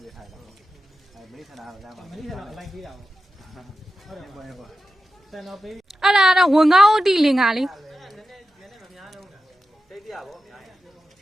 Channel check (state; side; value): normal; both; correlation 0.91